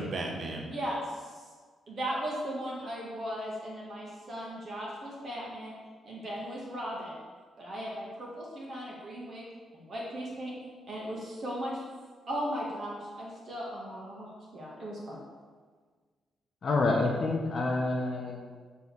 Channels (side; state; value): both; normal; correlation 0.80